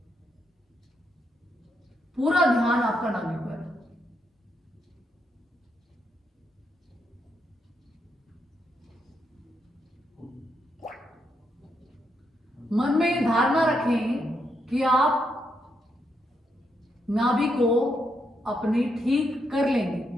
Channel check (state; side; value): normal; both; correlation 0.80